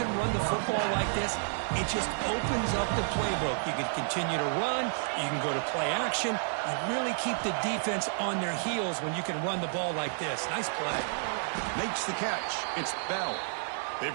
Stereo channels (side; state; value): left; silent; digital silence